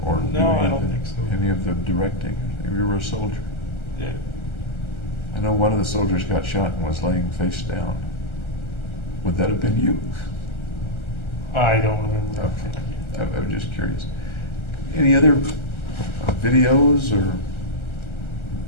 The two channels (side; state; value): right; late; 1.3 ms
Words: or do No, any I of don't the- think so. Any of the directing? You were a soldier. Yeah. I know one of the soldiers got shot and was laying face down. Would that have been you? I don't remember. Okay. I was just curious. Any other videos or